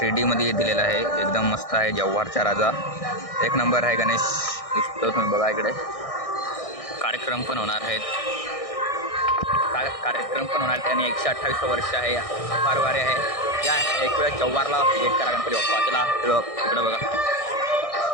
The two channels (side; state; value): right; late; 1.6 ms